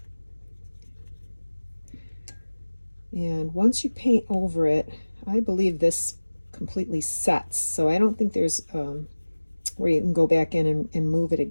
And once you paint over it, I believe this completely sets. So I don't think there's where you can go back in and move it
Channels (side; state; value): both; inverted; correlation -1.00